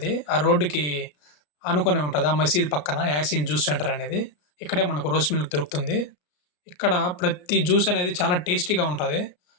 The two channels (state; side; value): late; right; 34 ms